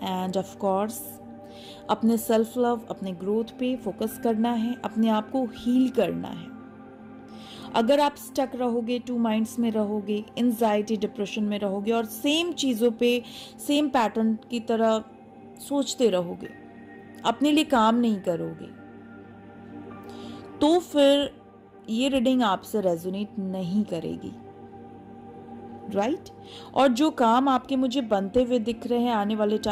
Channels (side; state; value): both; identical; correlation 1.00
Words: एंड ऑफ कोर्स अपने सेल्फ लव, अपने ग्रोथ पे फोकस करना है, अपने आप को हील करना है। अगर आप स्टक रहोगे, टू माइंड्स में रहोगे, एंजाइटी डिप्रेशन में रहोगे और सेम चीजों पे सेम पैटर्न की तरह सोचते रहोगे, अपने लिए काम नहीं करोगे, तो फिर ये रीडिंग आपसे रेजोनेट नहीं करेगी, राइट? और जो काम आपके मुझे बनते हुए दिख रहे हैं, आने वाले